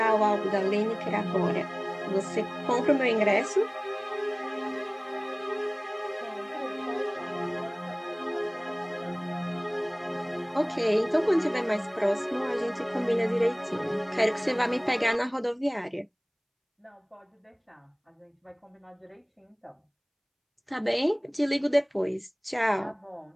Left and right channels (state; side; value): identical; both; correlation 1.00